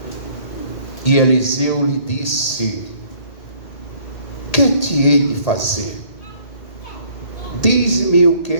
E Eliseu lhe disse: que te hei de fazer? Diz-me o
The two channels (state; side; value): late; right; 1.8 ms